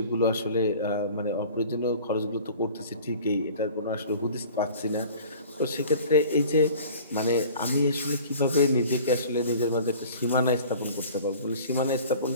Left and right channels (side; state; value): both; inverted; correlation -0.46